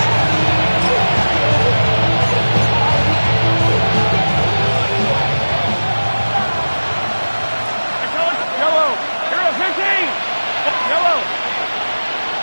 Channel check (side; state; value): both; inverted; correlation -1.00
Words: Yellow. Hero 15. Yellow.